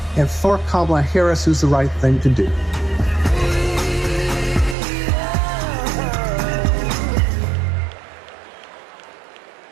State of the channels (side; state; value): left; drops out; at 4.8 s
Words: and for Kamala Harris is the right thing to do.